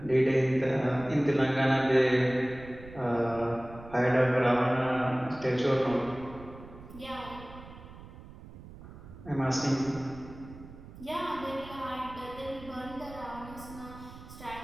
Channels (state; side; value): noise; right; rumble, 17 dB below the sound